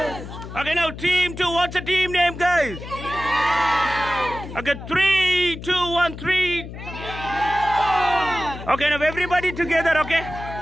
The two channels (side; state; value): left; noise; hum, 11 dB below the sound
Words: Okay, now team 2. What's the team name, guys? Okay, 3, 2, 1, 3. Okay, now everybody together, okay?